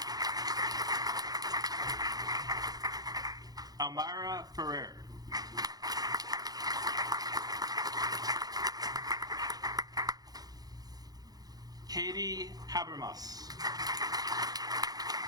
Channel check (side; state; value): left; late; 0.19 ms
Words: Almira Ferrer. Katie Habermas.